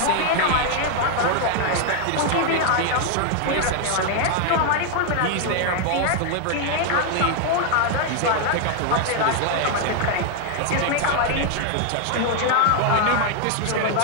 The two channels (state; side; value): different; both; correlation 0.00